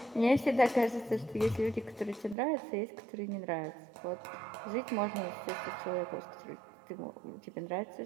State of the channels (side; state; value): left; drops out; at 2.4 s